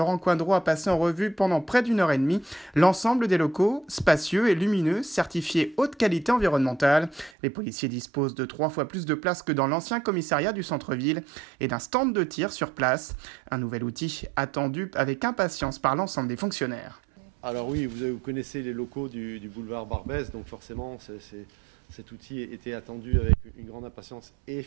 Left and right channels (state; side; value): drops out; left; at 7.3 s